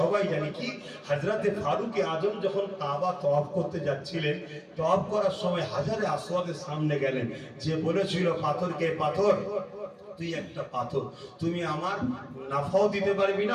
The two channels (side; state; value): both; identical; correlation 1.00